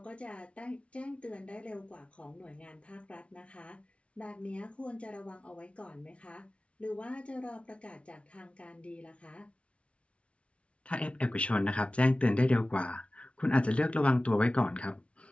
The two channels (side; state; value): right; late; 0.061 ms